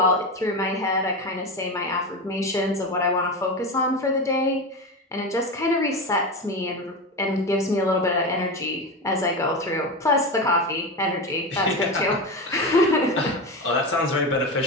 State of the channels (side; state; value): both; normal; correlation 0.20